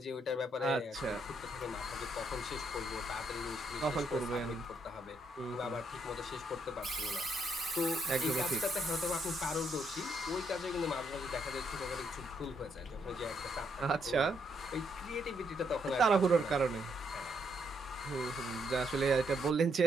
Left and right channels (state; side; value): normal; both; correlation 0.75